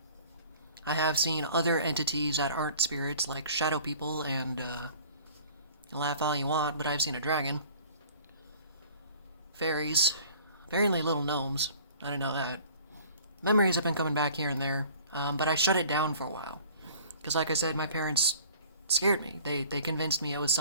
I have seen other entities that aren't spirits, like shadow people, and, laugh all you want, but I've seen a dragon. Fairies. Apparently little gnomes. I didn't know that. Memories have been coming back here and there, but I shut it down for a while. Because like I said, my parents scared me. They convinced me it was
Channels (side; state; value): both; inverted; correlation -0.50